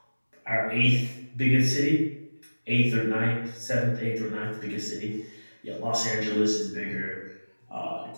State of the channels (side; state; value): both; inverted; correlation -1.00